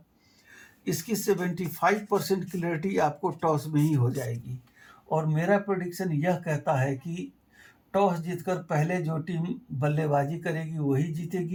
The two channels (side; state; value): both; identical; correlation 1.00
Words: इसकी 75% क्लियरिटी आपको टॉस में ही हो जाएगी। और मेरा प्रेडिक्शन यह कहता है कि टॉस जीतकर पहले जो टीम बल्लेबाजी करेगी वही